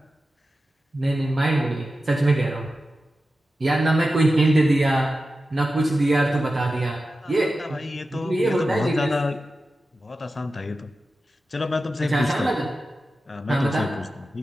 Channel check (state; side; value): normal; both; correlation 0.93